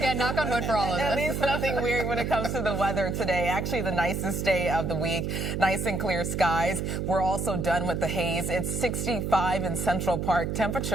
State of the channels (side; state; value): right; noise; hum, 2 dB below the sound